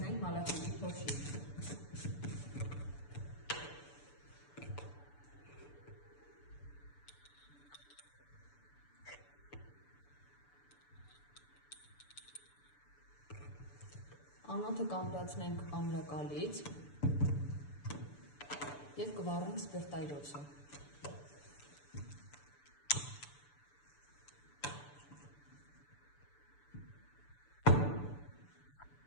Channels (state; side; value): late; right; 6.9 ms